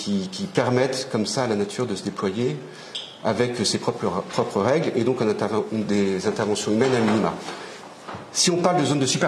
permettent comme ça à la nature de se déployer avec ses propres règles, et donc des interventions humaines à minima. Si on parle de zone de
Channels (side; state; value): both; identical; correlation 1.00